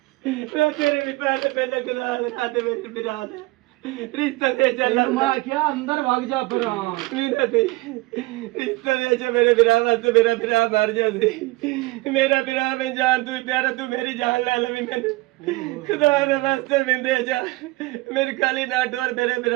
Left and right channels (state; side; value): quieter; left; 21.4 dB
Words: ਮੈਂ ਤੇਰੇ ਵੀ ਪੈਰ ਤੇ ਪਹਿਲੇ ਗੁਜ਼ਾਰ ਲਗਾ ਤੇ ਮੇਰੇ ਬਿਰਾ ਦੇ ਰਿਸ਼ਤਾ ਦੇ ਚੱਲ ਮੈਂ ਕਿਹਾ ਅੰਦਰ ਵਗ ਜਾ ਪਰਾਂ ਮੇਰਾ ਤੇ ਰਿਸ਼ਤਾ ਦੇ ਚ ਮੇਰੇ ਬਿਰਾ ਵਾਸਤੇ ਮੇਰਾ ਬਿਰਾ ਮਰ ਜਾ ਸੀ ਮੇਰਾ ਬਿਰਾ ਮੈਂ ਜਾਨ ਤੂੰ ਪਿਆਰਾ ਤੂੰ ਮੇਰੀ ਜਾਨ ਲੈ ਲਵੀ ਮੈਨੂੰ ਖੁਦਾ ਦੇ ਵਾਸਤੇ ਮਿੰਦੇ ਜਾ ਮੇਰੇ ਕਾਲੀ ਨਾ ਡੋਰ ਮੇਰੇ